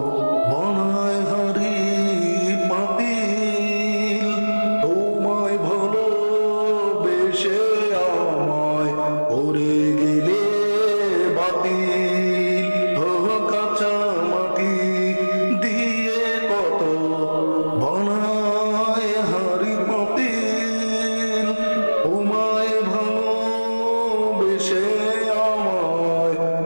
বানায় হাড়ি পাতিল, তোমায় ভালোবেসে আমায় ওরে গেলে বাতিল। কাঁচা মাটি দিয়ে কত বানায় হাড়ি পাতিল, তোমায় ভালোবেসে আমায়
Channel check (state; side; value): inverted; both; correlation -1.00